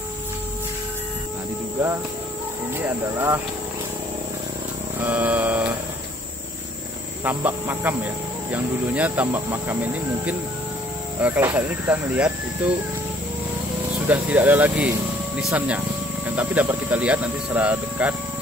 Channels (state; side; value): normal; both; correlation 0.59